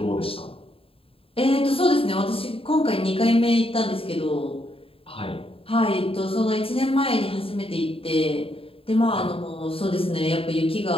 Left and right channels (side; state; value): right; late; 0.27 ms